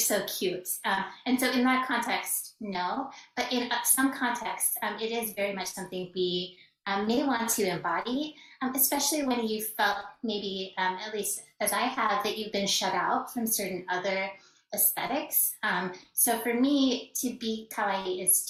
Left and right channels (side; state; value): both; identical; correlation 1.00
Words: cute. And so in that context, no. But in some contexts, it is very much something we may want to embody, especially when you felt maybe, at least as I have, that you've been shut out from certain other aesthetics. So for me, to be kawaii is